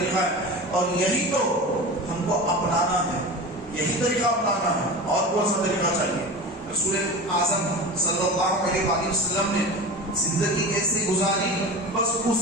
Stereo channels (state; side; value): normal; both; correlation 0.30